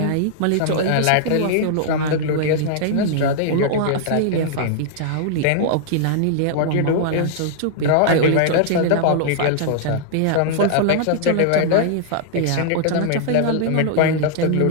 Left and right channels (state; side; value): different; both; correlation -0.01